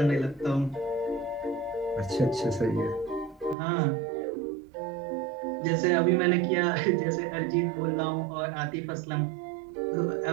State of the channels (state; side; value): drops out; left; at 3.6 s